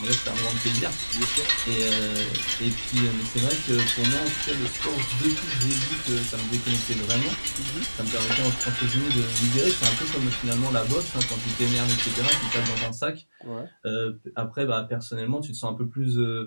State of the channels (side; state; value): both; inverted; correlation -1.00